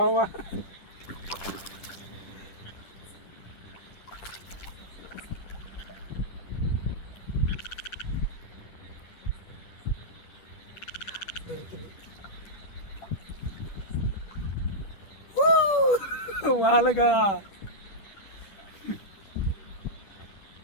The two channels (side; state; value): right; late; 10 ms